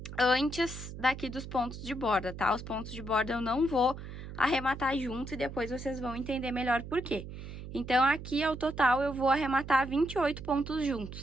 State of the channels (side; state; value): right; noise; hum, 10 dB below the sound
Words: antes daqui dos pontos de borda, tá? Os pontos de borda eu não vou arrematar junto e depois vocês vão entender melhor por quê. Então, aqui, ao total, eu vou arrematar 28 pontos